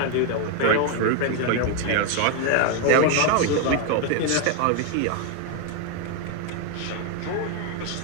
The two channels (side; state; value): both; different; correlation 0.01